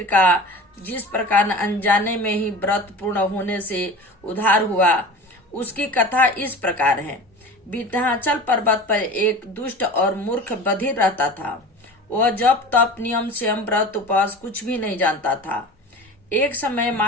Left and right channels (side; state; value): both; normal; correlation 0.35